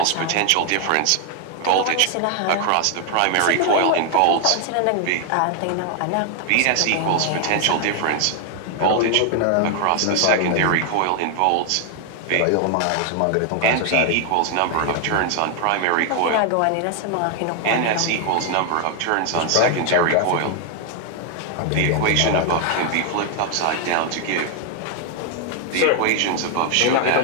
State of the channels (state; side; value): different; both; correlation 0.00